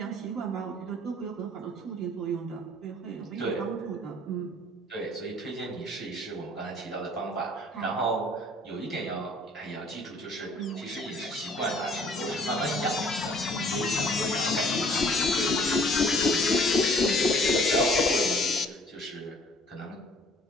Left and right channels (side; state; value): both; normal; correlation 0.55